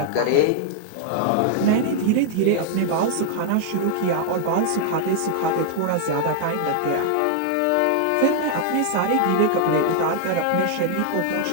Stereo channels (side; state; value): both; different; correlation -0.01